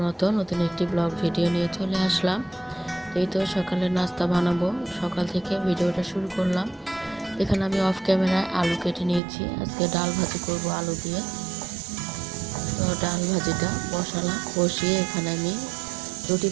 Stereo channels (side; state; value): left; drops out; at 9.2 s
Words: মতো নতুন একটি ব্লগ ভিডিও নিয়ে চলে আসলাম। এই তো সকালের নাস্তা বানাবো, সকাল থেকে ভিডিওটা শুরু করলাম। এখানে আমি অফ ক্যামেরায় আলু কেটে নিয়েছি। আজকে ডাল ভাজি করব আলু দিয়ে। তো ডাল ভাজিটা বসিয়ে এখানে আমি রুটি